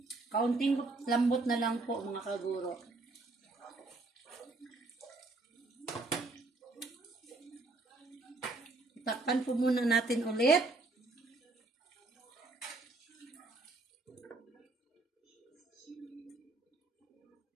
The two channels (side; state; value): left; quieter; 3.3 dB